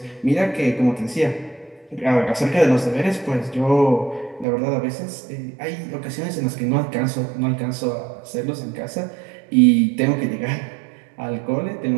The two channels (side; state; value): left; drops out; at 4.5 s